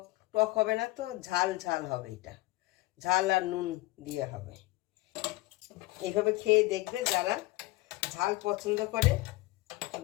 টক হবে না তো, ঝাল ঝাল হবে। এটা ঝাল আর নুন দিয়ে হবে। এইভাবে খেয়ে দেখবে, যারা ঝাল পছন্দ করে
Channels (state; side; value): quieter; right; 20.3 dB